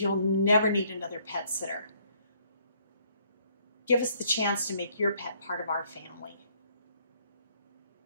never need another pet sitter. Give us the chance to make your pet part of our family.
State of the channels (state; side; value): inverted; both; correlation -0.65